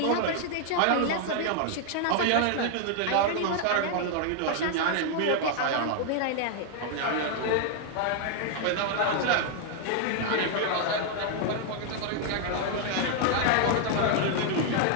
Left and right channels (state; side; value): different; both; correlation 0.00